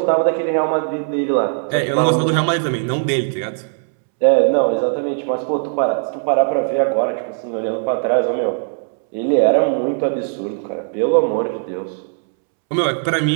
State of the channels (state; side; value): silent; left; 67 dB below the other